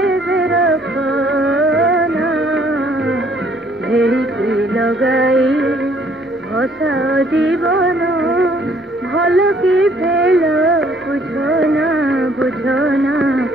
রখনা ভেড়িকি লগাই ভসা জীবন ভাল কি ফেল বুঝনা বুঝনা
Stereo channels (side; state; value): both; normal; correlation 0.62